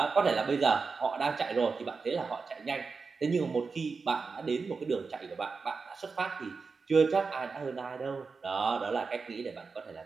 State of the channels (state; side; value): quieter; left; 4.7 dB